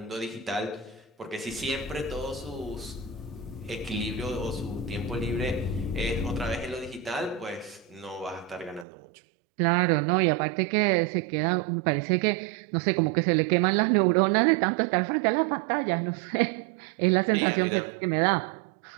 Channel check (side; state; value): left; drops out; at 8.8 s